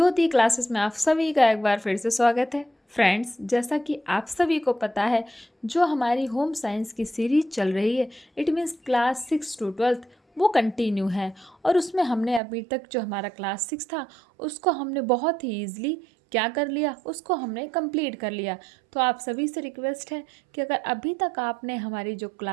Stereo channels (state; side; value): drops out; left; at 12.4 s